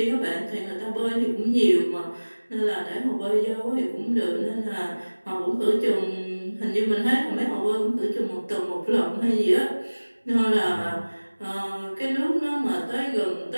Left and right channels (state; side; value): inverted; both; correlation -1.00